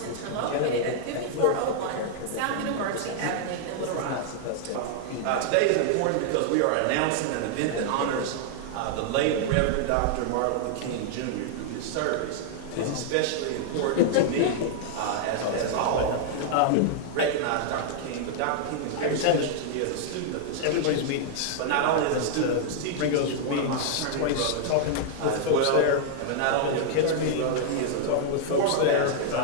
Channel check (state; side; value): different; both; correlation -0.01